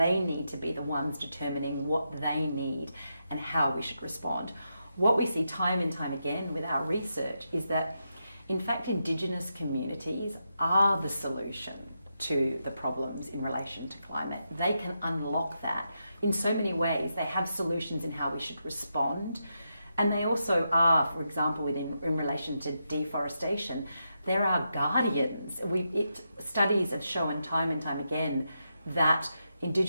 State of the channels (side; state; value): both; inverted; correlation -0.85